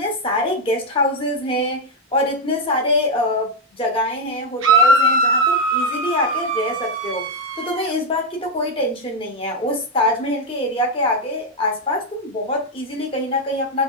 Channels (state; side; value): normal; both; correlation 0.04